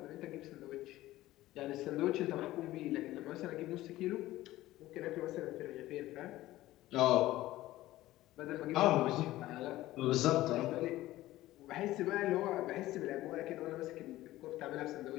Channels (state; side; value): quieter; right; 16.2 dB